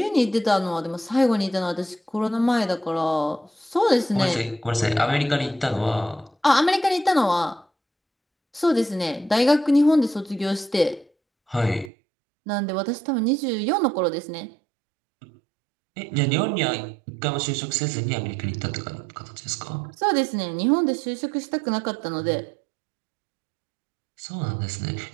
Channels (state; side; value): drops out; left; at 11.9 s